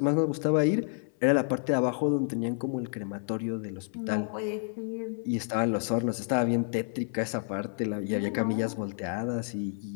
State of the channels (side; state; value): right; silent; 55 dB below the other